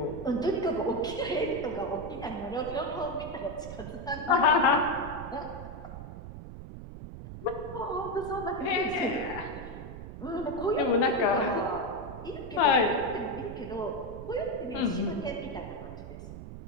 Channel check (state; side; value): noise; right; rumble, 11 dB below the sound